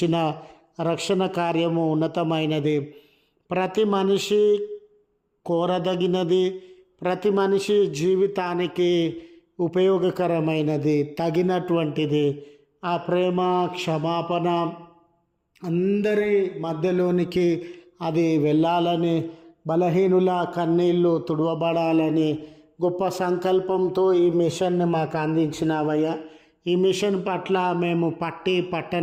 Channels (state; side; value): identical; both; correlation 1.00